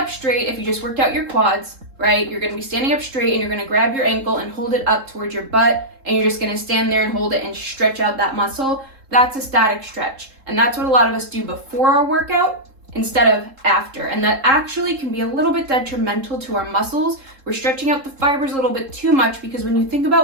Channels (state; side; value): late; left; 3.7 ms